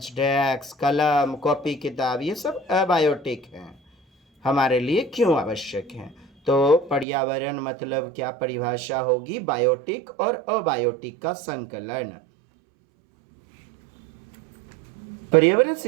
डेस्क, कलम, कॉपी, किताब, ये सब अबायोटिक हैं, हमारे लिए क्यों आवश्यक हैं। तो पर्यावरण मतलब क्या परिभाषा होगी, बायोटिक और अबायोटिक का संकलन। पर्यावरण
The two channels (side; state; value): left; drops out; at 7.1 s